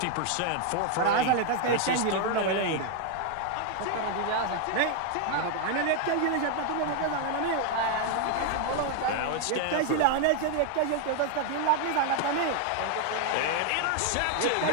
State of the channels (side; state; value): both; different; correlation 0.00